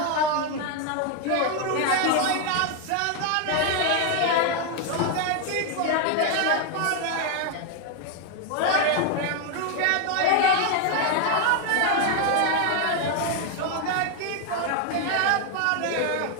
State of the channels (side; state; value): both; different; correlation 0.01